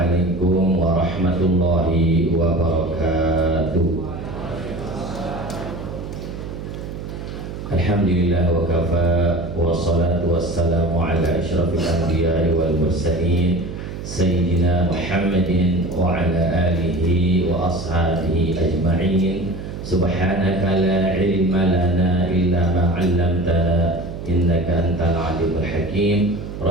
warahmatullahi wabarakatuh. Alhamdulillah wa kafa, wassalatu wassalamu ala asyrafil anbiya'i wal mursalin Sayyidina Muhammadin wa ala alihi wa ashabihi ajma'in. Subhanaka la ilma lana illa ma 'allamtana innaka antal alimul hakim.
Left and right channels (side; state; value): right; noise; hum, 9 dB below the sound